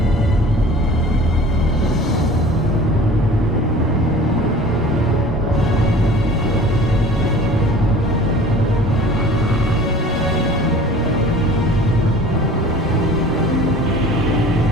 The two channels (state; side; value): normal; both; correlation 0.44